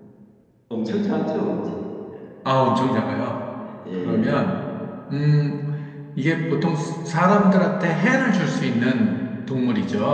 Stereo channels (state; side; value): identical; both; correlation 1.00